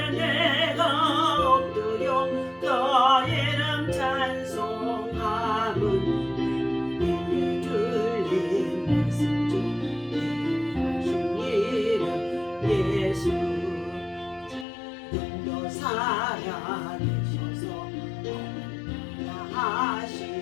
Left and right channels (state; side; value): drops out; right; at 14.7 s